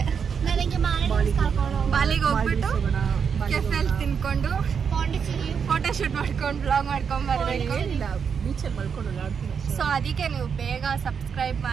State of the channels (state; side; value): quieter; left; 6.7 dB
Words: ನನಗೆ ಬಾಲಿಗೆ ಹೋಗ್ಬಿಟ್ಟು ಕೆಫೆಲ್ ತಿನ್ಕೊಂಡು ಫೋಟೋ ಶೂಟ್ ಮಾಡ್ಕೊಂಡು ಬ್ಲಾಗ್ ಮಾಡ್ಕೊಂಡ್ ಬರ್ಬೇಕು. ಬೀಚಲ್ಲಿ ಮಲ್ಕೊಂಡು ಆಡ್ತೀನಿ. ಸೊ ಅದಕ್ಕೆ ನೀವು ಬೇಗ ಸಬ್ಸ್ಕ್ರೈಬ್